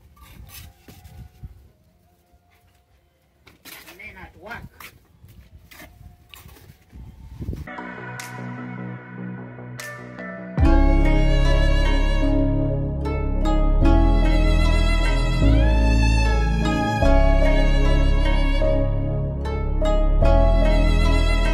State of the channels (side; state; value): both; identical; correlation 1.00